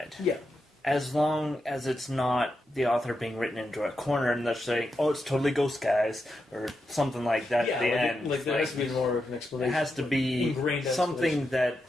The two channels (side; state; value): both; normal; correlation 0.86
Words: Yeah. As long as it's not the author being written into a corner and they're saying, "Oh, it's totally ghost guys" or something like that at the end. Like there has to be more of an explanation. It has to be something